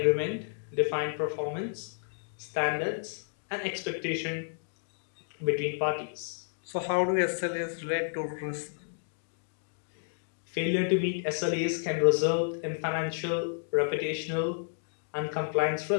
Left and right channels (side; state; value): right; silent; digital silence